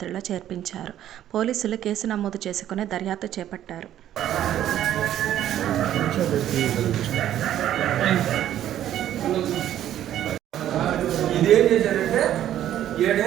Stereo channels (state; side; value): quieter; left; 11.7 dB